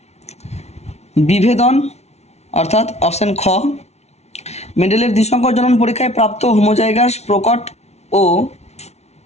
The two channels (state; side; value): late; right; 0.31 ms